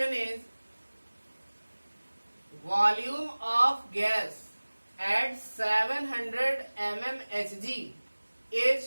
is volume of gas at 700 mmHg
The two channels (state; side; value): inverted; both; correlation -1.00